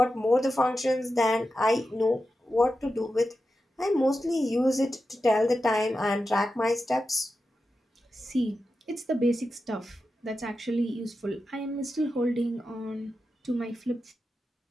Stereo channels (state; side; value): normal; both; correlation 0.90